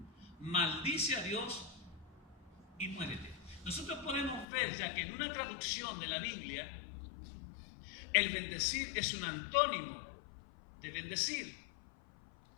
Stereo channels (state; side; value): drops out; right; at 4.5 s